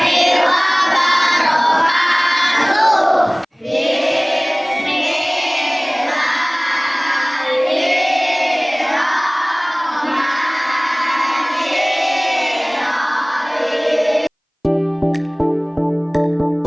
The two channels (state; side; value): identical; both; correlation 1.00